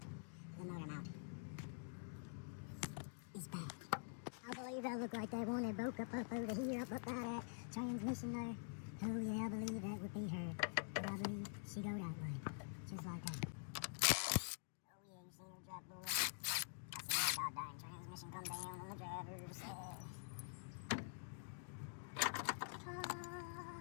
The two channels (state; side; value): silent; right; digital silence